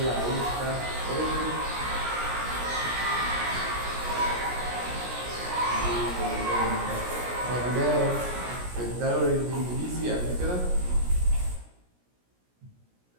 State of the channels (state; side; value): late; left; 17 ms